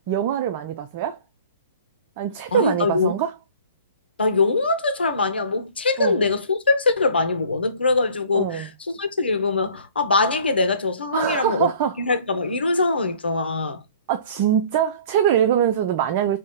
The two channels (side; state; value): both; inverted; correlation -0.49